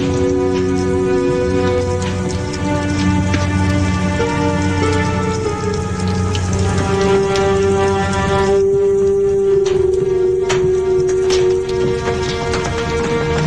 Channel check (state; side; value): identical; both; correlation 1.00